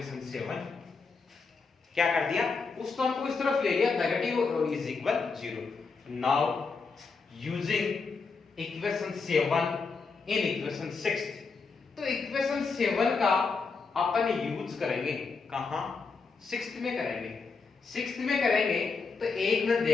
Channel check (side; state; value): right; quieter; 4.6 dB